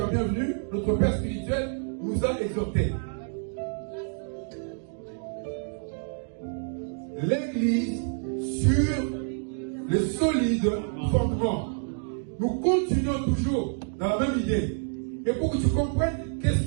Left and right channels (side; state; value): left; silent; 59 dB below the other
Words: bienvenu, notre Père spirituel, nous a exhortés? L'Église sur le solide fondement. Nous continuons toujours dans la même idée. Et pour que tu comprennes qu'est-ce